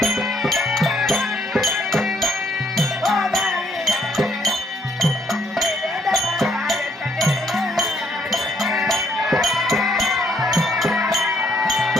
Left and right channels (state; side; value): normal; both; correlation 0.68